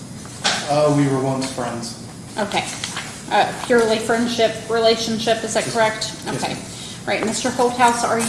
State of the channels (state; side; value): identical; both; correlation 1.00